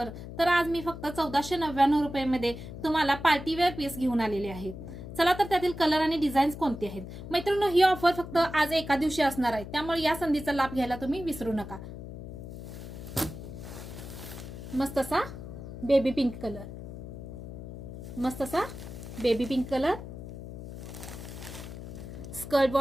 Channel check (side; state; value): left; noise; hum, 11 dB below the sound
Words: तर आज मी फक्त 1499 रुपयांमध्ये तुम्हाला पार्टीवेअर पीस घेऊन आलेले आहे। चला तर त्यातील कलर आणि डिझाईन्स कोणते आहेत? मैत्रिणींनो, ही ऑफर फक्त आज एका दिवशी असणार आहे, त्यामुळे या संधीचा लाभ घ्यायला तुम्ही विसरू नका। मस्त असा बेबी पिंक कलर, मस्त असा baby pink colour, skirt